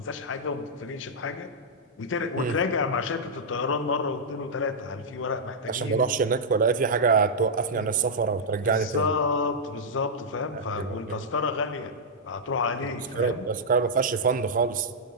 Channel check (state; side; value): normal; both; correlation -0.08